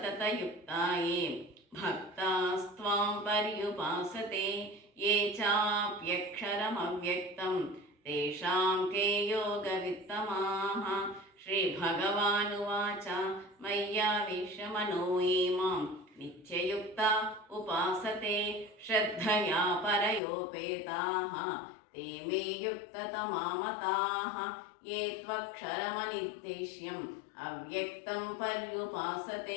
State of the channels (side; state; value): right; drops out; at 20.2 s